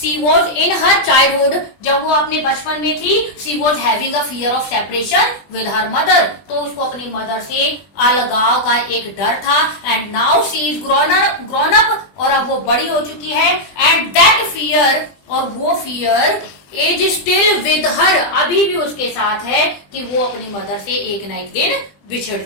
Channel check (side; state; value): right; late; 20 ms